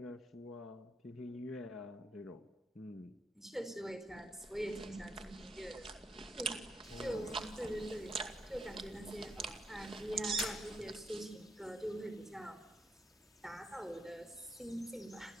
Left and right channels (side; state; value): both; normal; correlation 0.77